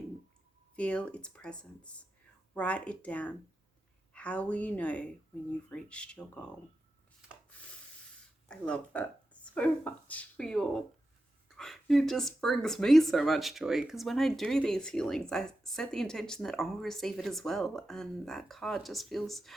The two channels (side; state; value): both; normal; correlation 0.91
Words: Feel its presence. Write it down. How will you know when you've reached your goal? I love that so much for you all. It just brings me so much joy because when I do these healings, I set the intention that I'll receive it as well. And that card just feels